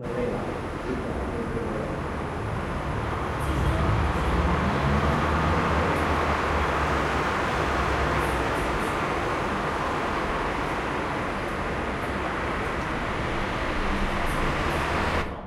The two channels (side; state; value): both; identical; correlation 1.00